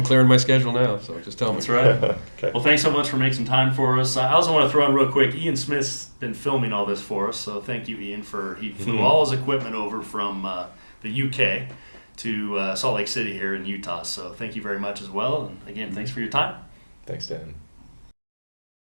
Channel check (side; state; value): both; inverted; correlation -1.00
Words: clearing my schedule now, so just tell me. That's right. Okay. Well, thanks so much for making some time for us. I also want to throw in real quick, Ian Smith's been filming all this for us, so thank you, Ian, he flew all his equipment over from the UK to Salt Lake City here in Utah, so thank you very much as well. And again, thanks for your time. Thanks, Dan.